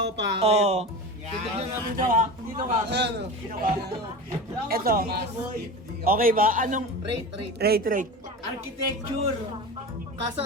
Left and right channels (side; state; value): both; normal; correlation 0.29